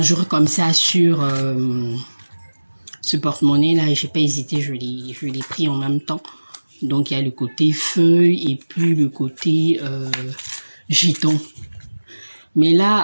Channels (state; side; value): inverted; both; correlation -1.00